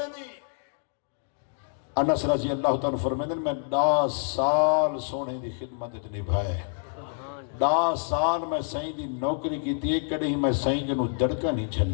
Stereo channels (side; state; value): right; silent; digital silence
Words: دی انس رضی اللہ تعالیٰ فرمائن میں 10 سال سونے دی خدمت نبھائے 10 سال میں سائیں دی نوکری کی تھی ایک کڑے ہی میں سائیں کے نو دڑکا نہیں